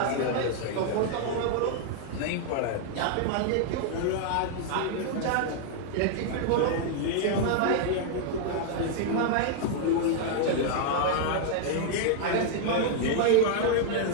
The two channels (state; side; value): different; both; correlation 0.00